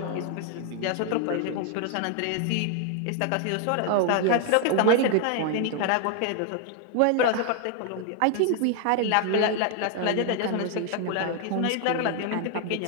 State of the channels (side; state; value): both; different; correlation 0.00